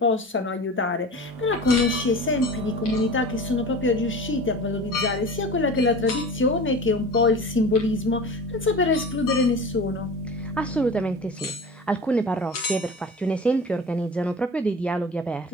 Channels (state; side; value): normal; both; correlation 0.35